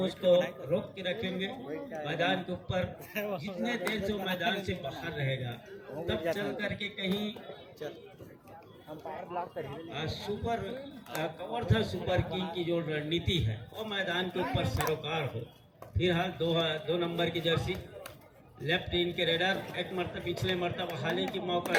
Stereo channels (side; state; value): both; identical; correlation 1.00